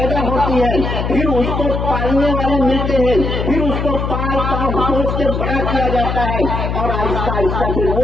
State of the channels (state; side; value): noise; left; hum, 2 dB below the sound